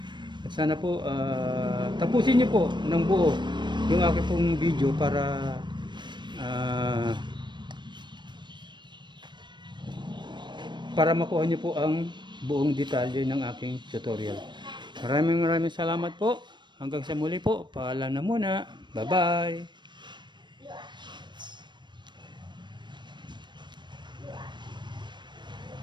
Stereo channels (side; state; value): left; late; 0.22 ms